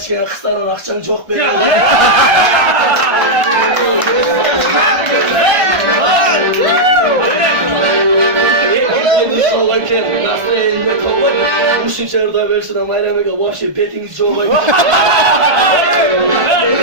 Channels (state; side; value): late; left; 1.4 ms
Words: kısaran akşam çok belli. Nasıl eline kovay? Bu şimşerde versin ama elemege vahşi petiniz çoğay.